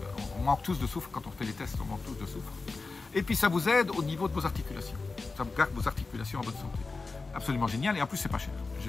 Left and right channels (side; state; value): right; quieter; 3.9 dB